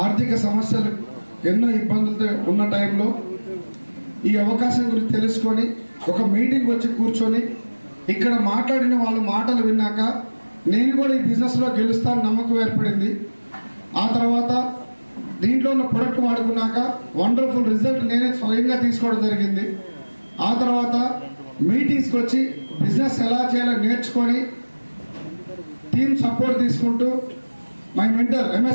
ఆర్థిక సమస్యలు ఎన్నో ఇబ్బందులతో ఉన్న టైంలో ఈ అవకాశం గురించి తెలుసుకొని ఒక మీటింగ్ వచ్చి కూర్చొని ఇక్కడ మాట్లాడిన వాళ్ళ మాటలు విన్నాక నేను కూడా ఈ బిజినెస్లో గెలుస్తాను నమ్మకం ఏర్పడింది. ఆ తర్వాత దీంట్లో ఉన్న ప్రొడక్ట్ వాడుకున్నాక వండర్ఫుల్ రిజల్ట్ నేనే స్వయంగా తీసుకోవడం జరిగింది. ఆ తర్వాత మీటింగ్స్కి వచ్చి బిజినెస్ ఎలా చేయాలో నేర్చుకొని టీమ్ సపోర్ట్ తీసుకుంటూ మై మెంటర్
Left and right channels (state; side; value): inverted; both; correlation -1.00